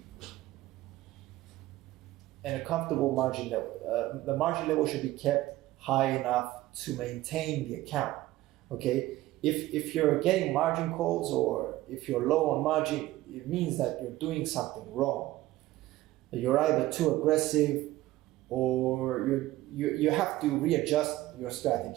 in a comfortable margin level. The margin level should be kept high enough to maintain the account. Okay, if you're getting margin calls or if you're low on margin, it means that you're doing something wrong. You're either too aggressive or you have to readjust your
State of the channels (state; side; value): quieter; left; 16.5 dB